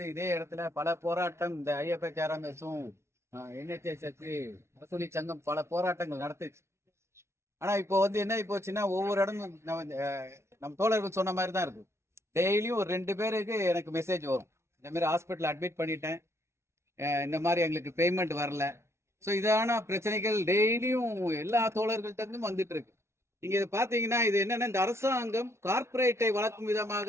இதே இடத்துல பல போராட்டம் இந்த ஐஎஃப்எச்ஆர்எம்எஸும் NHS அரசூழியர் சங்கம் பல போராட்டங்கள் நடத்துச்சு. ஆனா இப்போ என்ன போச்சுன்னா ஒவ்வொரு இடமும் நம்ம தோழர்கள் சொன்ன மாதிரி தான் இருக்கு. டெய்லியும் ஒரு 2 பேருக்கு எனக்கு மெசேஜ் வரும், இந்த மாதிரி ஹாஸ்பிட்டல் அட்மிட் பண்ணிட்டேன், இந்த மாதிரி எங்களுக்கு பேமெண்ட் வரல. ஸோ இதான பிரச்சனைகள் டெய்லியும் எல்லா தோழர்கள்ட்ட இருந்தும் வந்துட்டு இருக்கு. நீங்க இதை பாத்தீங்கன்னா இது என்னன்னா, இந்த அரசாங்கம் கார்பரேட்டை வளர்க்கும்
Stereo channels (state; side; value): late; left; 0.13 ms